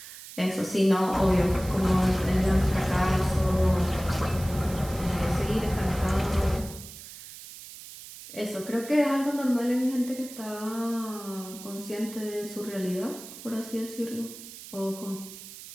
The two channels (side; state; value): right; noise; hiss, 15 dB below the sound